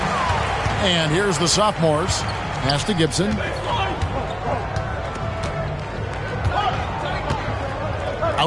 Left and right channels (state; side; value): identical; both; correlation 1.00